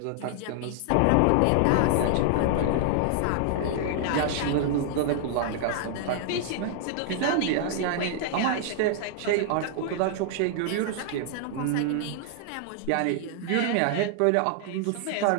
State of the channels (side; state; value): both; different; correlation -0.01